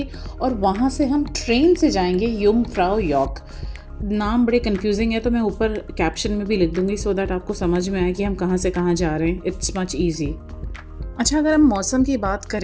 और वहाँ से हम ट्रेन से जाएंगे यूंगफ्राउ यॉर्क। नाम बड़े कंफ्यूजिंग है, तो मैं ऊपर कैप्शन में भी लिख दूंगी सो दैट आपको समझ में आए कि हम कहाँ से कहाँ जा रहे हैं। It's much easy. अच्छा, अगर हम मौसम की बात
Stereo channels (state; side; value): identical; both; correlation 1.00